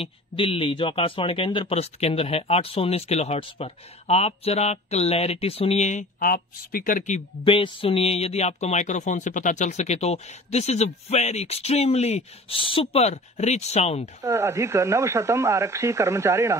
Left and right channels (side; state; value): both; normal; correlation 0.42